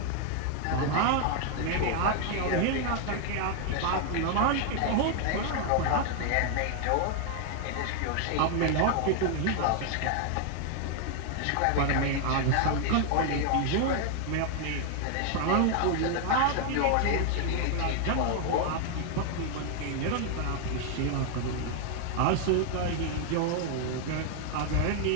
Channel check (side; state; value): both; different; correlation 0.00